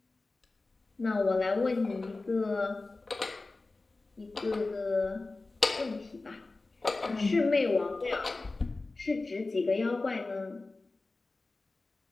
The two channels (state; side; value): quieter; right; 3.4 dB